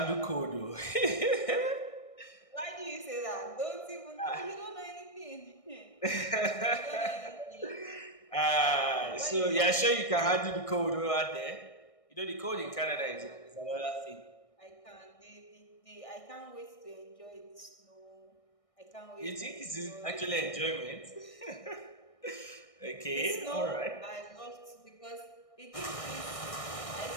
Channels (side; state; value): right; late; 1.6 ms